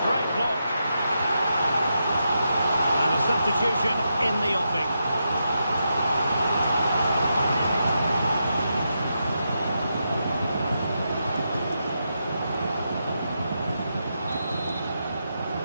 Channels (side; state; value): both; inverted; correlation -0.85